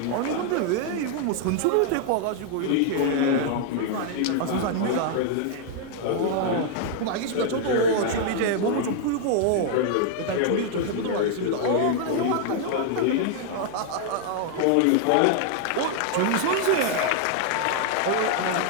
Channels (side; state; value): both; different; correlation 0.00